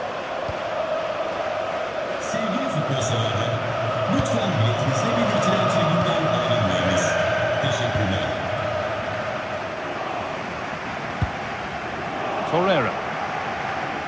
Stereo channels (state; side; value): identical; both; correlation 1.00